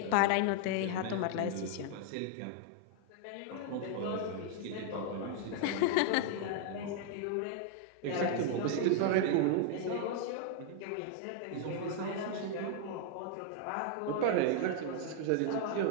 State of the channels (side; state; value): both; different; correlation 0.00